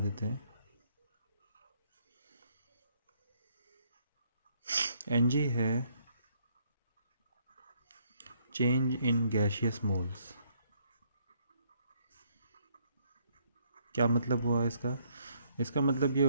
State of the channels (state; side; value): inverted; both; correlation -0.69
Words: देते हैं। एन जी है चेंज इन गैशियस मोल्स। क्या मतलब हुआ इसका? इसका मतलब ये